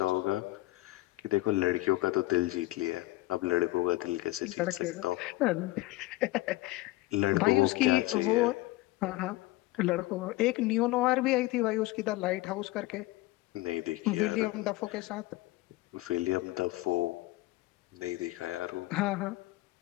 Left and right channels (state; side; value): quieter; right; 18.9 dB